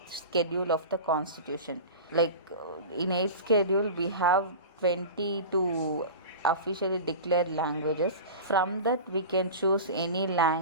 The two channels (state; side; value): inverted; both; correlation -0.31